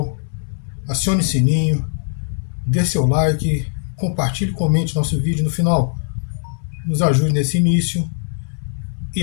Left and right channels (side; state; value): right; silent; 65 dB below the other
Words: acione o sininho, dê seu like, compartilhe e comente nosso vídeo no final. Nos ajude nesse início